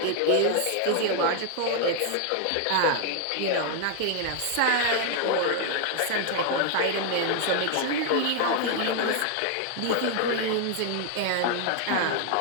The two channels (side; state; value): both; different; correlation 0.00